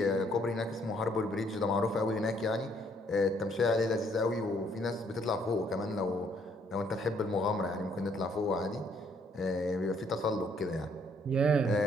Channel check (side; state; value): both; normal; correlation 0.67